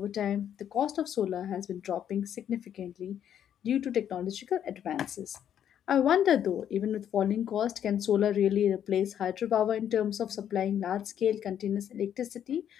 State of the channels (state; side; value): quieter; right; 9.7 dB